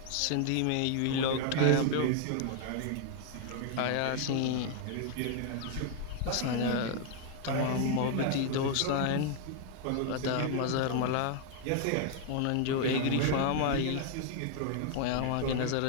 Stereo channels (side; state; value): both; different; correlation 0.00